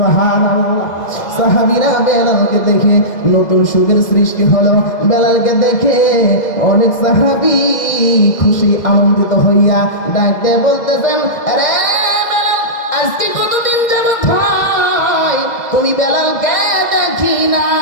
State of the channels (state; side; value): late; right; 2.0 ms